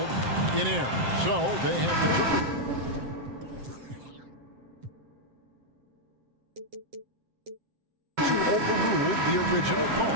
in error. So they have determined to overrule the original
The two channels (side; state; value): left; late; 7.7 ms